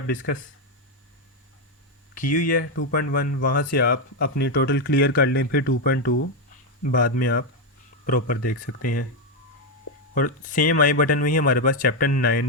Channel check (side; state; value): both; normal; correlation 0.05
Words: डिस्कस की हुई है 2.1, वहाँ से आप अपनी टोटल क्लियर कर लें, फिर 2.2 बाद में आप प्रॉपर देख सकते हैं। और सेम आई बटन में ही हमारे पास चैप्टर